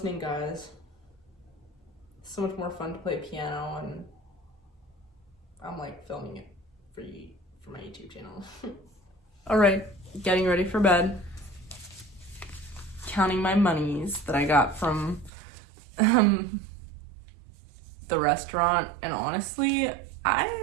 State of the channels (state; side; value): drops out; left; at 15.3 s